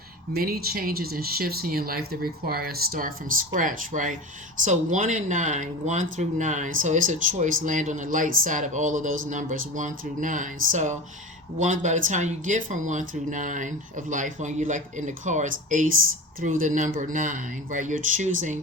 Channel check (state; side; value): normal; both; correlation 0.30